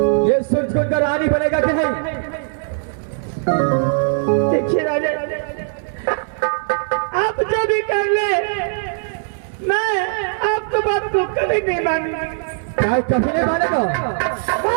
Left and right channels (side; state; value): left; silent; 63 dB below the other